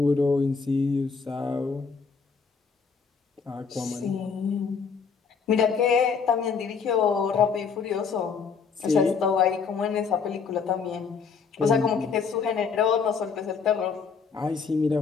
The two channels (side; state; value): right; quieter; 5.7 dB